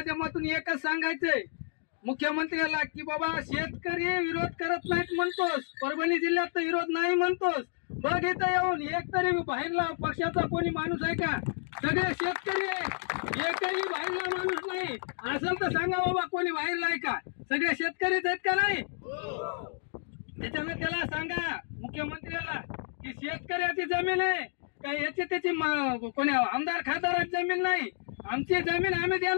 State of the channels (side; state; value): right; silent; 58 dB below the other